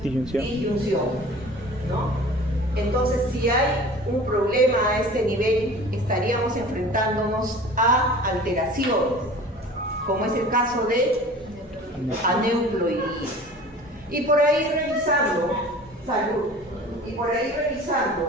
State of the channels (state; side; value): normal; both; correlation 0.42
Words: disyunción, ¿no? Entonces, si hay un problema a este nivel, estaríamos enfrentándonos a alteraciones, como es el caso de aneuploidía. Y por ahí revisando,